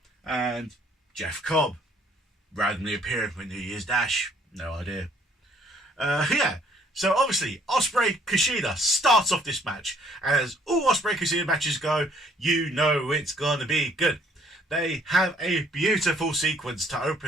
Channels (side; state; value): both; normal; correlation 0.62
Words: and Jeff Cobb. Randomly appearing for New Year's Dash. No idea. Yeah. So obviously, Ospreay Kushida starts off this match. As all Ospreay Kushida matches go, you know it's going to be good. They have a beautiful sequence to